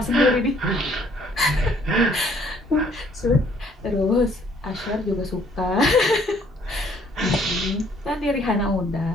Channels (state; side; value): normal; both; correlation 0.62